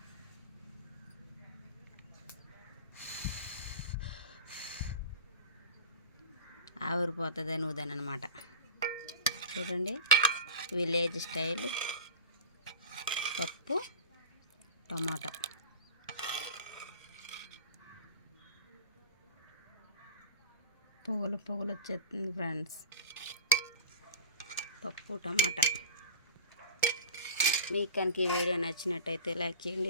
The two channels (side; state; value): both; inverted; correlation -0.34